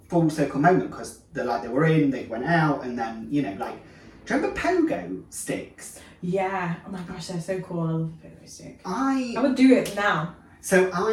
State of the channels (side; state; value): both; identical; correlation 1.00